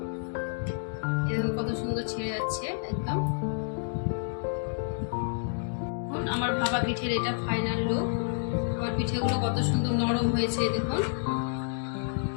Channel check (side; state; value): right; silent; digital silence